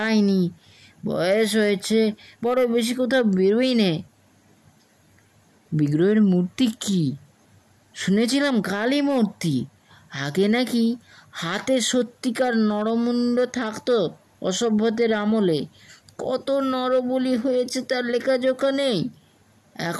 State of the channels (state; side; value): identical; both; correlation 1.00